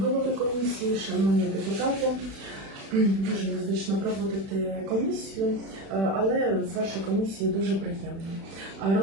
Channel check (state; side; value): late; left; 36 ms